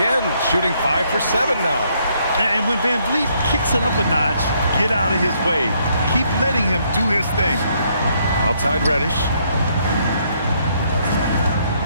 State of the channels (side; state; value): both; inverted; correlation -0.71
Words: Shooting 5 for 7 now. And when Van Vliet kicks it up a notch, get out of his way. Keep letting him do his thing. Outside Reddish.